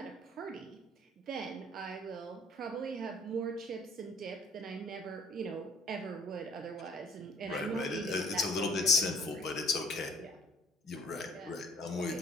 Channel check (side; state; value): both; normal; correlation 0.56